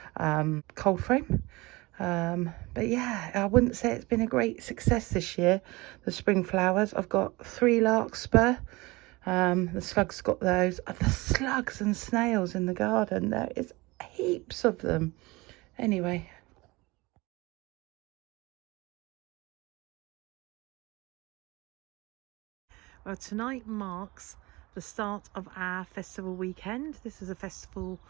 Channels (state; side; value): quieter; left; 22.6 dB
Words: cold frame. But yeah, I wouldn't say it's been a great success this year, the spring flowers. I've got 3 larkspur. The slugs got those. The slugs and snails in the garden, there is heaps of them. Anyway, well, tonight marks the start of our festival weekend. This is a festival